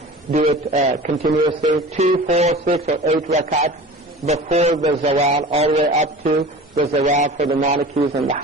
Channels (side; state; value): both; normal; correlation 0.38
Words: do it continuously, 2, 4, 6, or 8 rakats before the zawal, all the way up to the zawal for the Malikis and the